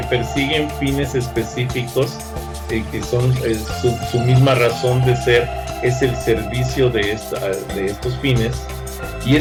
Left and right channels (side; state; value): both; identical; correlation 1.00